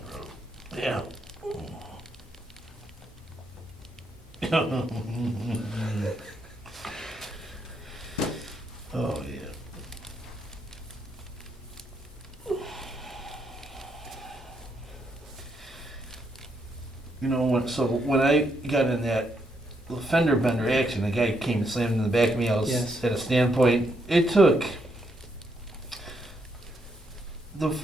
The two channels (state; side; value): normal; both; correlation 0.77